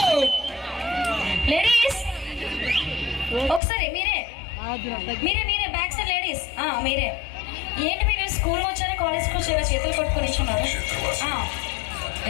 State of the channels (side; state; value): right; drops out; at 3.6 s